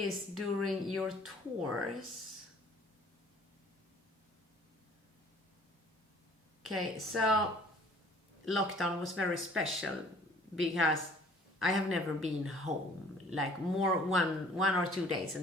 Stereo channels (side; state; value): both; normal; correlation 0.54